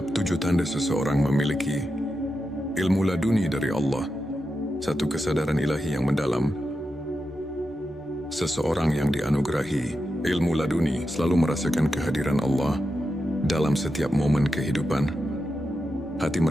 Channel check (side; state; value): both; normal; correlation 0.88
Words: 7 tanda seseorang memiliki ilmu laduni dari Allah, satu kesadaran ilahi yang mendalam. Seseorang yang dianugerahi ilmu laduni selalu merasakan kehadiran Allah dalam setiap momen kehidupan. Hati